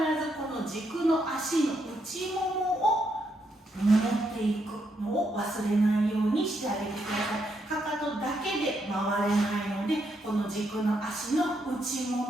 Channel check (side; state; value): both; normal; correlation 0.78